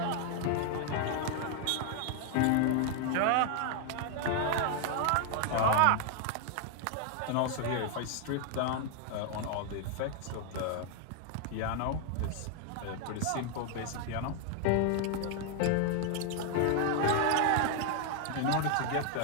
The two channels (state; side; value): different; both; correlation 0.00